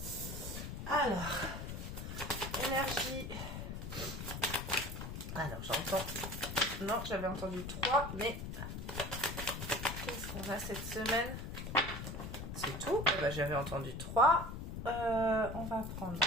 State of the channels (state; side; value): noise; left; rumble, 7 dB below the sound